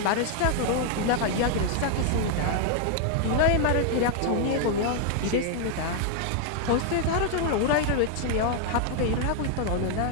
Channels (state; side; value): different; both; correlation 0.00